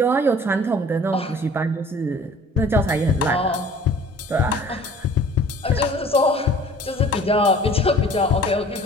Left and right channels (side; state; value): both; normal; correlation 0.49